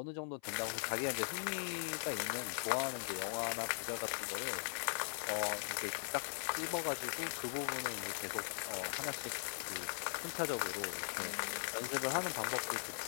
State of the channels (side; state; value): right; silent; 51 dB below the other